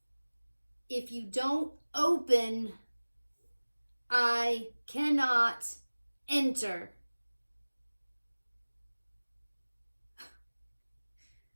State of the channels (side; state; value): both; inverted; correlation -1.00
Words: If you don't open, I cannot enter.